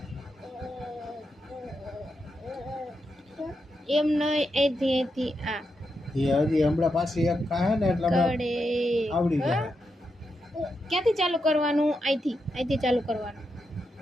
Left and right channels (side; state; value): both; normal; correlation 0.85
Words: એમ નહીં અહીંથી આ એ હજી હમણાં પાછી એક ખાહે ને એટલે કડે આવડી જાય ક્યાંથી ચાલુ કરવાનું અહીંથી ચાલુ કરવાનું